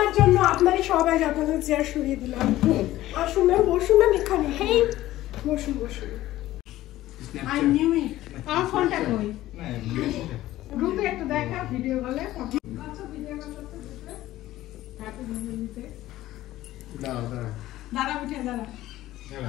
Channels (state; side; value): quieter; right; 15.3 dB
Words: জন্য আপনারই সবাই আপনাদের চেয়ার সরিয়ে দিলাম। আসুন ম্যাম, বসুন ম্যাম এখানে। হেই বসুন বসুন। I knew it. আমার ফোনটা কই? গ্রুপে একটা দেখা ভিডিও বলে দাঁড়া মিঠাই দাঁড়া।